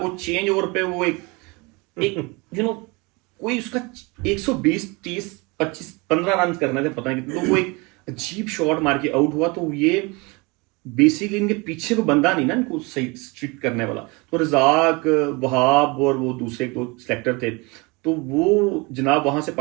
چینج اوور پہ وہ ایک کوئی اس کا 120-30-25-15 رن کرنا تھے, پتہ نہیں کتنے, تو وہ ایک عجیب شاٹ مار کے آؤٹ ہوا. تو یہ بیسیکلی ان کے پیچھے کوئی بندہ نہیں نا ان کو صحیح اسٹرکٹ کرنے والا. تو رزاق, وہاب اور وہ دوسرے 2 سلیکٹر تھے, تو وہ جناب وہاں سے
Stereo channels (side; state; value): left; quieter; 27.0 dB